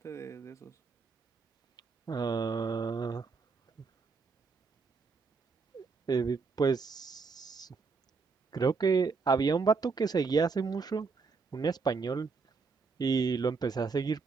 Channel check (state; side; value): quieter; left; 4.7 dB